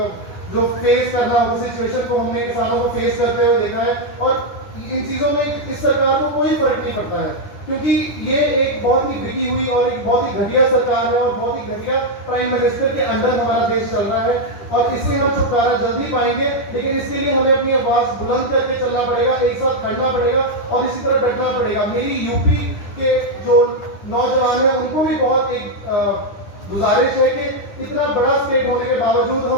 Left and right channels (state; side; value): late; right; 9.9 ms